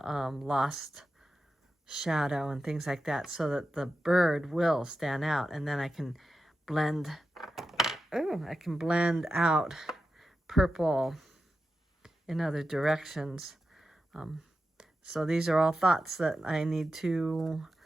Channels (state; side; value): normal; both; correlation 0.91